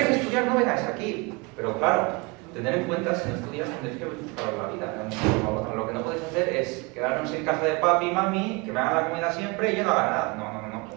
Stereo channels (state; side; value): quieter; left; 27.7 dB